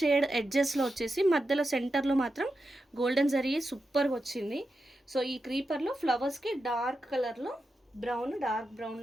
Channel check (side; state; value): both; normal; correlation 0.89